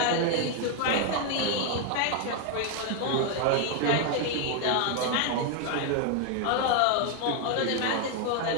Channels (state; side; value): different; both; correlation 0.01